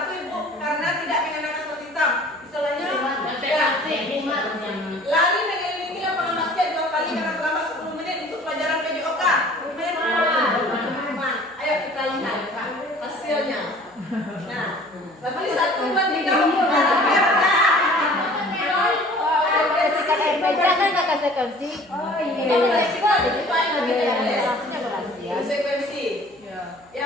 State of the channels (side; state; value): right; noise; hum, 30 dB below the sound